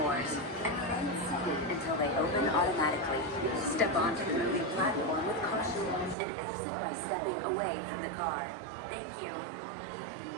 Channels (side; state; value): left; drops out; at 6.2 s